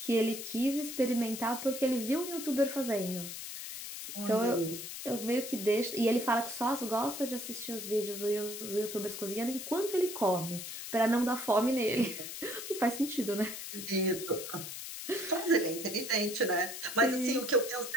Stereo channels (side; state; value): left; noise; hiss, 8 dB below the sound